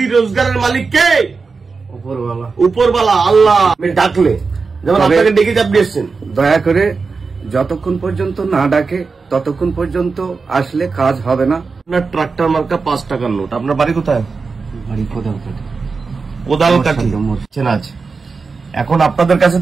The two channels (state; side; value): quieter; left; 4.6 dB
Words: রোজগারের মালিক কে? উপরওয়ালা। উপরওয়ালা আল্লাহ। আমি ডাকলে যেমন আপনাকে ডেকে আপনি এসছেন, দয়া করে যতক্ষণ পর্যন্ত না ডাকে ততক্ষণ পর্যন্ত আসলে কাজ হবে না। আপনার ট্রাক্টর মার্কা 5 টাকার নোট। আপনার বাড়ি কোথায়? বাড়ি কোদালকাঠি। কোদালকাঠি চেনা আছে। এখন আপনাদের কাছে